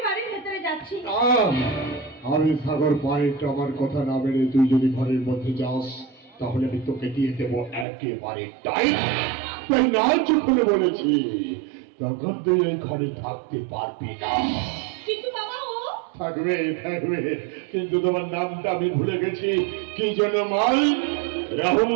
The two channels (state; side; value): drops out; left; at 7.9 s